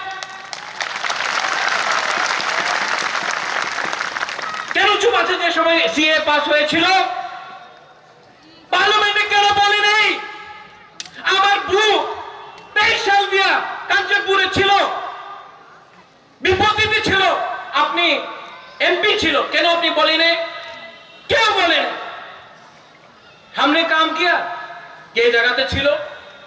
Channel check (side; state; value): both; identical; correlation 1.00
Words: কেন কিছু আছে যে সময় সিএ পাস হয়েছিল পার্লামেন্টে কেন বলি নেই আমার বু 23 সাল দিয়া কাঞ্চনপুরে ছিল বিপত্তিতে ছিল আপনি एमपी छिलो কেন আপনি বলেন क्यों बोले हमने काम किया ये जगह पे छिलो